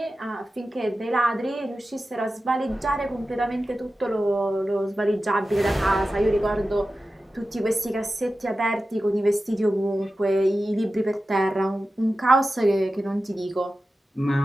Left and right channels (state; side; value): normal; both; correlation 0.94